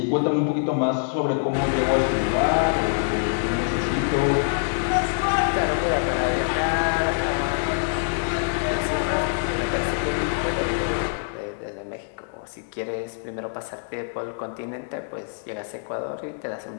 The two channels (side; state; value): right; silent; digital silence